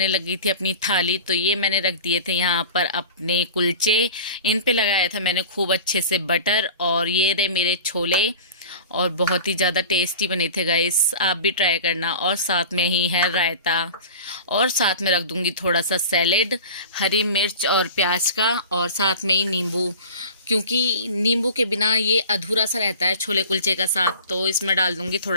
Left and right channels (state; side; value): inverted; both; correlation -0.37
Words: लगी थी अपनी थाली। तो ये मैंने रख दिए थे यहाँ पर अपने कुलचे, इन पे लगाया था मैंने खूब अच्छे से बटर। और ये रहे मेरे छोले, और बहुत ही ज़्यादा टेस्टी बने थे गाइस, आप भी ट्राई करना। और साथ में ही है रायता, और साथ में रख दूँगी थोड़ा सा सैलेड, हरी मिर्च और प्याज का, और साथ में ही नींबू, क्योंकि नींबू के बिना ये अधूरा सा रहता है छोले कुलचे का साथ। तो इसमें डाल दूँगी